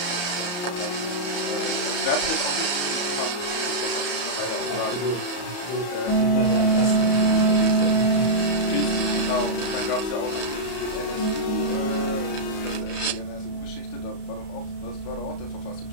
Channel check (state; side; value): late; right; 34 ms